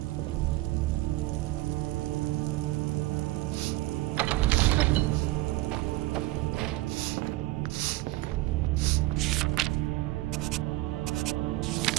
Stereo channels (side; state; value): left; quieter; 18.3 dB